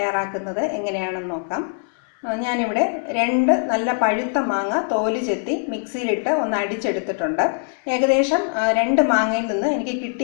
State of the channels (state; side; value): silent; right; digital silence